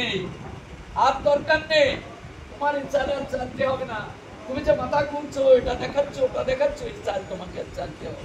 আর দরকার নেই। তোমার এই চাল আর চালতে হবে না। তুমি যে মাথা ঘুরছো, এটা দেখাচ্ছ, ওটা দেখাচ্ছ, এই চাল তোমাকে আর চালতে হবে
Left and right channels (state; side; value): identical; both; correlation 1.00